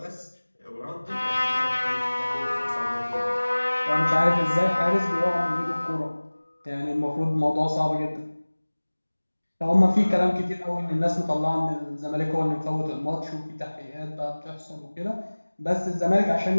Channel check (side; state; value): both; inverted; correlation -1.00